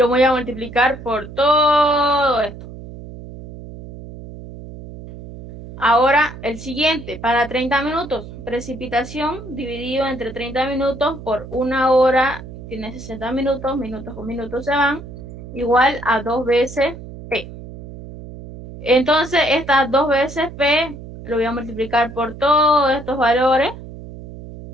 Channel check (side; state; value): right; noise; hum, 14 dB below the sound